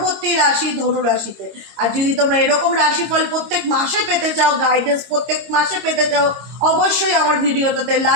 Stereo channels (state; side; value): late; left; 26 ms